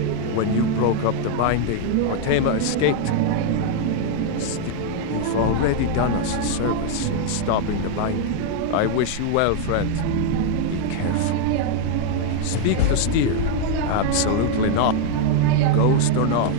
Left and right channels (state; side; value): different; both; correlation 0.00